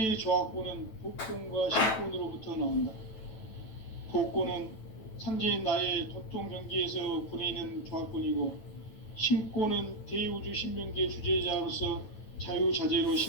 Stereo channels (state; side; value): late; right; 9.1 ms